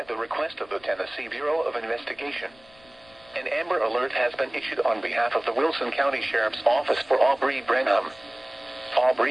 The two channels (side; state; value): left; noise; rumble, 28 dB below the sound